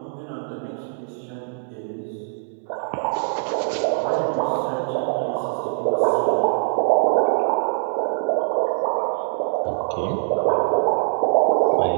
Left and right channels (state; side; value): silent; left; digital silence